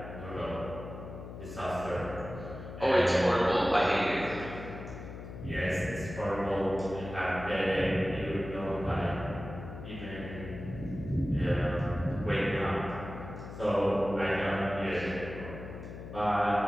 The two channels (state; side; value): noise; left; hum, 11 dB below the sound